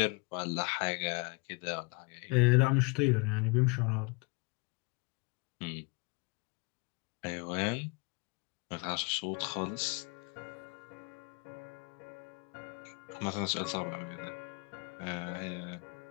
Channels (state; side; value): quieter; right; 31.3 dB